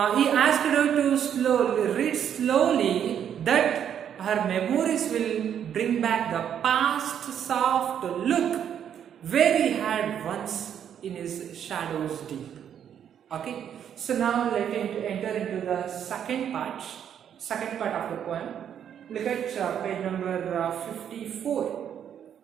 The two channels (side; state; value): left; quieter; 9.0 dB